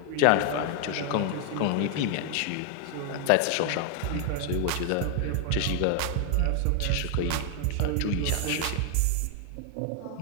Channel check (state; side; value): different; both; correlation 0.00